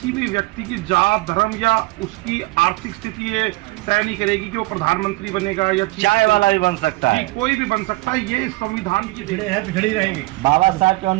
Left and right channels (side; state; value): left; quieter; 22.2 dB